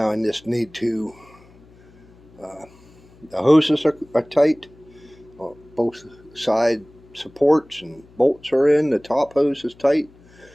I just need to, the hoses are tight. Both side supports and bolts are in. The top hose is tight.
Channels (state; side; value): noise; left; hum, 27 dB below the sound